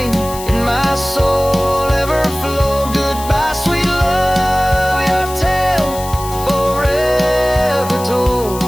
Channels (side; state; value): left; noise; hiss, 13 dB below the sound